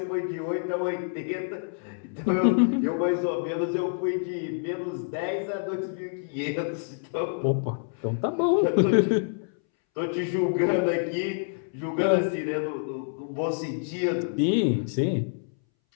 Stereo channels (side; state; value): right; silent; 60 dB below the other